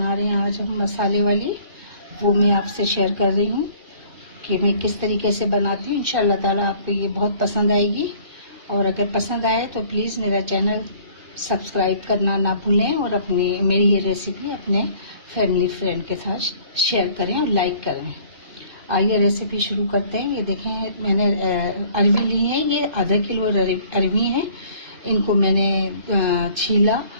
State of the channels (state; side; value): late; left; 2.5 ms